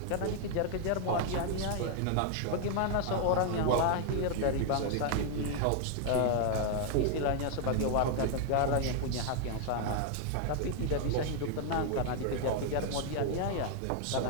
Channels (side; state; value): both; different; correlation 0.00